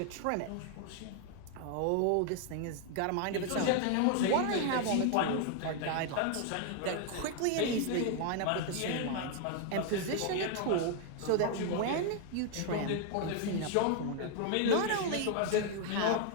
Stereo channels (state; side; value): different; both; correlation 0.00